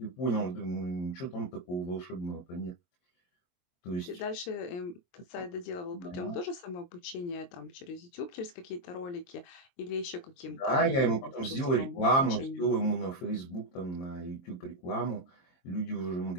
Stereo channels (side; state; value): right; late; 23 ms